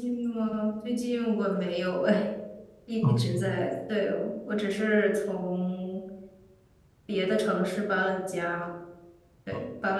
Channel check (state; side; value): identical; both; correlation 1.00